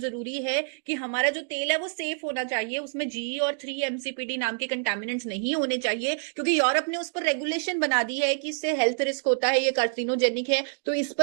है कि हमारा जो तेल है वो सेफ होना चाहिए, उसमें जी और 3-MCPD नाम के कंटामिनेंट्स नहीं होने चाहिए, क्योंकि यूरोप ने उस पर रेगुलेशन बना दी है कि इससे हेल्थ रिस्क होता है, ये कार्सिनोजेनिक है, तो इस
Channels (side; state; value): left; silent; digital silence